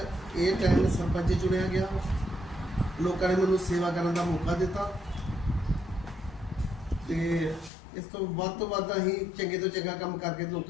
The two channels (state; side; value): drops out; right; at 7.7 s